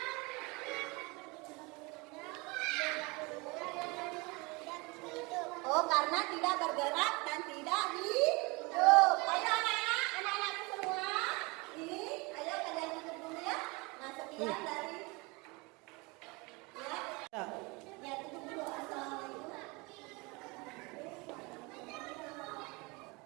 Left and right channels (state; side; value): quieter; left; 26.6 dB